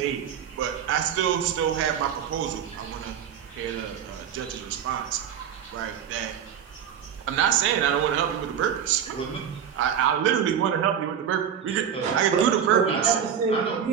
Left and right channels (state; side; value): quieter; left; 8.5 dB